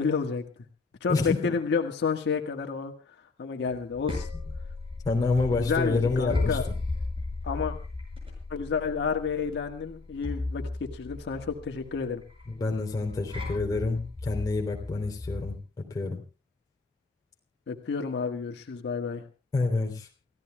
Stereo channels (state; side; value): quieter; right; 3.8 dB